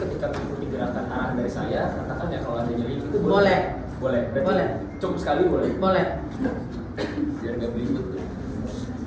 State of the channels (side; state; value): both; identical; correlation 1.00